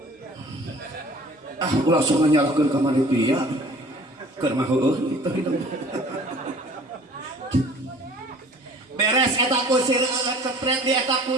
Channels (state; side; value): normal; both; correlation 0.49